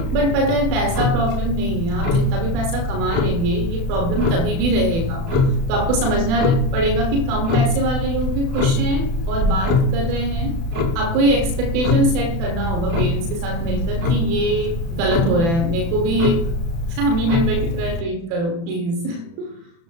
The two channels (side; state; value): left; late; 36 ms